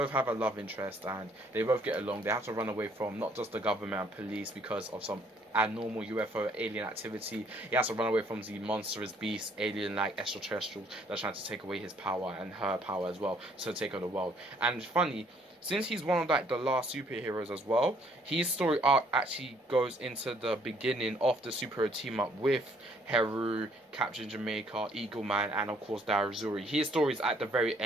have a love interest and they both get along. They have to run away from not just the government and police because of some abnormal UFO alien activity. He has to run away from the monstrous beast, alien-like extraterrestrials that's trying to take away his power and her power as well, so take over the world. And funny, since he's one of like the last superheroes as well, his story arc actually goes into the beginning of the superhero team up with Heru, Captain Jamaica, Eagle Man, and of course Dyozjuri. His story is at the very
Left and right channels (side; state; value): both; normal; correlation 0.64